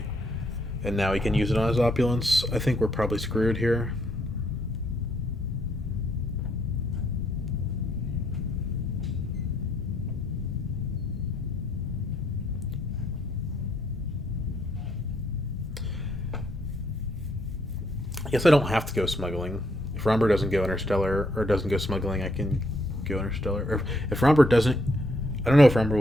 And now he can use it on his opulence. I think we're probably screwed here. Guess I don't have to go smuggling. If Romber doesn't go interstellar or doesn't go smuggling, I can go interstellar. Or if Romber doesn't, I don't know if Romber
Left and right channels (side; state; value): both; normal; correlation 0.72